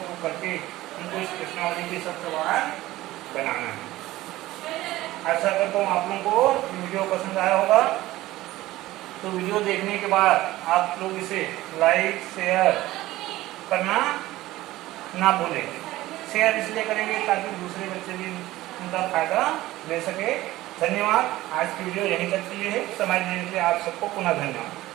करके उनको इस प्रश्नावली के सब सवाल बनाना है। आशा करता हूँ आप लोगों को वीडियो पसंद आया होगा। तो वीडियो देखने के बाद आप लोग इसे लाइक शेयर करना ना भूलें। शेयर इसलिए करेंगे ताकि दूसरे बच्चे भी उनका फायदा ले सके। धन्यवाद। आज की वीडियो यहीं तक के लिए है। समझने के लिए आप सबको पुनः धन्यवाद।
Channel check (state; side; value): quieter; left; 16.8 dB